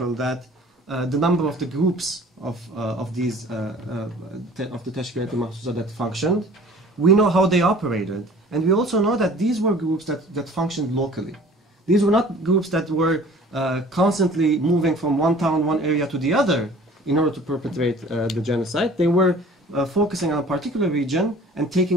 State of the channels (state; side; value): normal; both; correlation 0.48